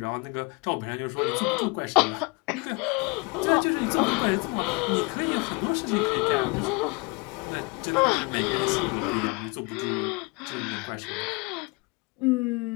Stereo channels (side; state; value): right; quieter; 28.8 dB